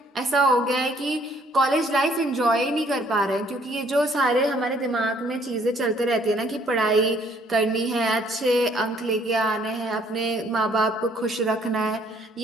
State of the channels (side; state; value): both; normal; correlation 0.63